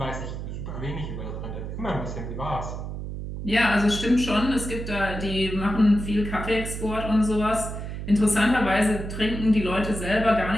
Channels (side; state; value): right; noise; hum, 7 dB below the sound